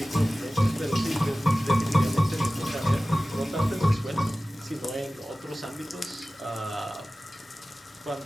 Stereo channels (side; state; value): both; normal; correlation 0.96